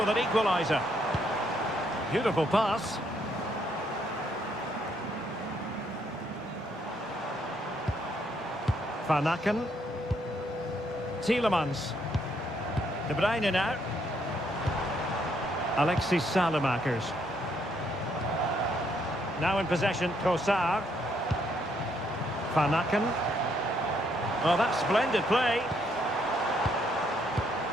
an equaliser. Beautiful pass. Van Aken. Tielemans. De Bruyne now. Alexis Salemakers. Now in possession, Trossard. Van Aken. Oh, that's splendid play.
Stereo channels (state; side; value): normal; both; correlation 0.72